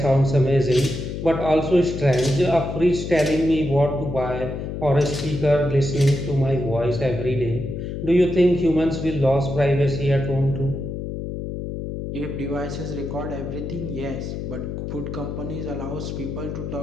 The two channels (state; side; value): noise; left; hum, 6 dB below the sound